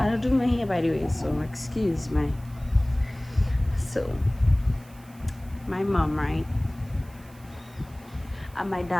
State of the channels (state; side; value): noise; right; hiss, 26 dB below the sound